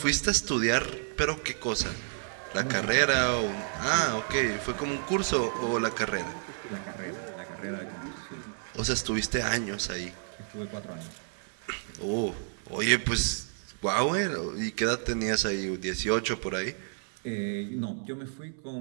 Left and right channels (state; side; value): silent; left; 58 dB below the other